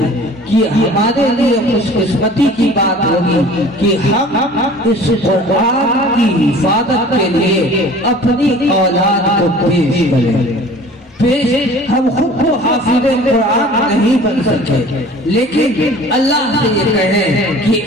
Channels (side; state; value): both; normal; correlation 0.46